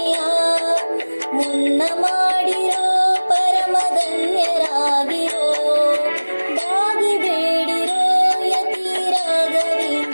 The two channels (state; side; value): inverted; both; correlation -1.00